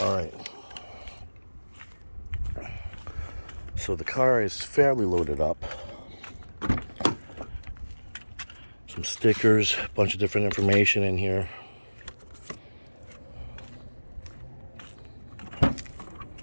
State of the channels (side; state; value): both; inverted; correlation -1.00